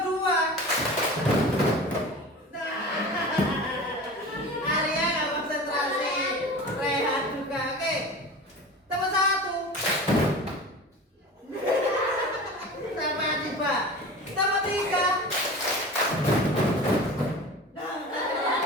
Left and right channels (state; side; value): normal; both; correlation 0.35